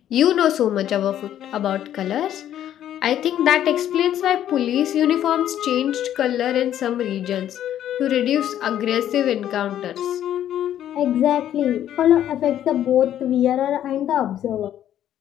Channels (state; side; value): quieter; right; 11.2 dB